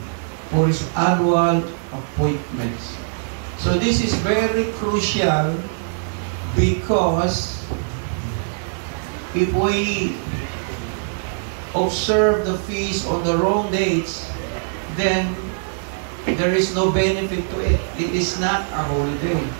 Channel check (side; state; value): left; silent; 64 dB below the other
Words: for His annual appointments. So this is very crucial because if we observe the feast on the wrong dates, then there is no benefit to it. It is not a holiday.